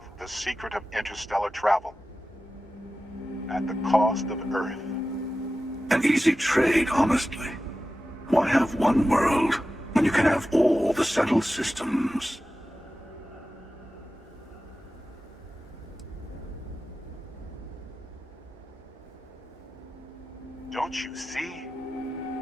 the secret of interstellar travel. At the cost of Earth. An easy trade, honestly. Why have one world when you can have all the settled systems? Don't you see?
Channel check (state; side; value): normal; both; correlation 0.94